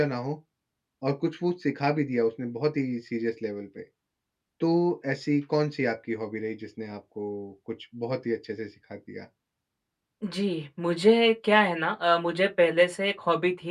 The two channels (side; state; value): both; identical; correlation 1.00